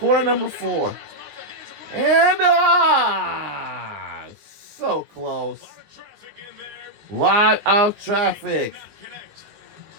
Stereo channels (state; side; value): late; left; 20 ms